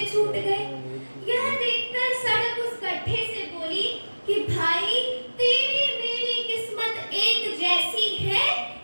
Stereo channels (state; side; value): inverted; both; correlation -1.00